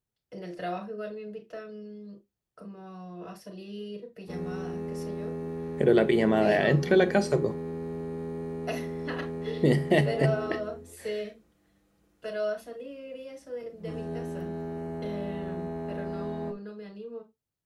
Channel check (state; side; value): identical; both; correlation 1.00